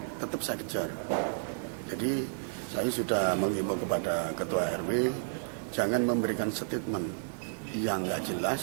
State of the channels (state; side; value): silent; left; 57 dB below the other